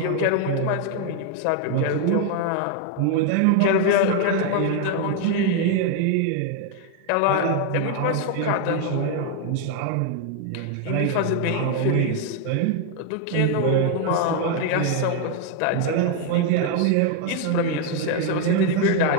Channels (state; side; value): different; both; correlation 0.01